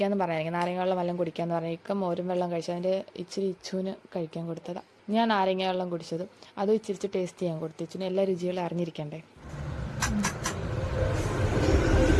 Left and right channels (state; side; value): identical; both; correlation 1.00